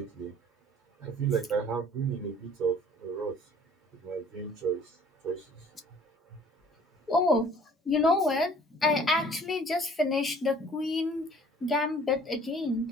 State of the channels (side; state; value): both; normal; correlation 0.53